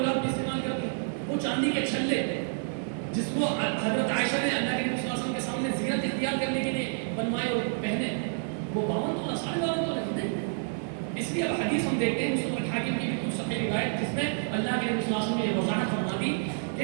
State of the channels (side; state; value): left; silent; digital silence